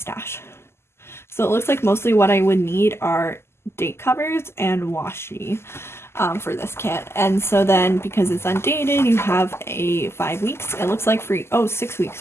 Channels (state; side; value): late; right; 0.12 ms